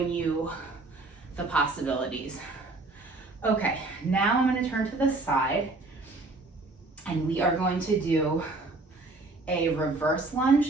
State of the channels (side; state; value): left; quieter; 3.3 dB